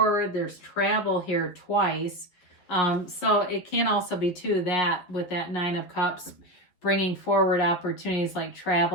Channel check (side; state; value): right; late; 11 ms